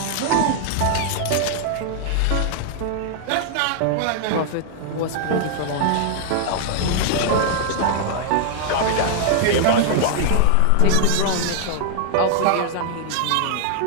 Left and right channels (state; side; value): different; both; correlation -0.01